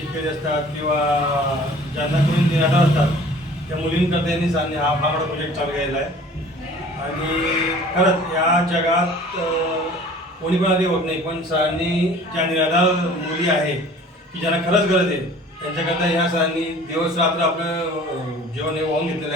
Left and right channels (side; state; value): both; normal; correlation 0.48